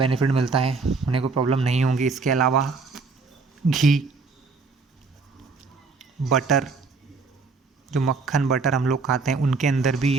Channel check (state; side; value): quieter; left; 4.4 dB